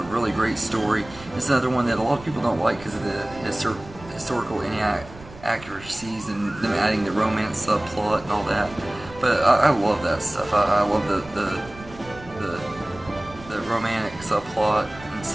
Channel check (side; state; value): right; noise; rumble, 18 dB below the sound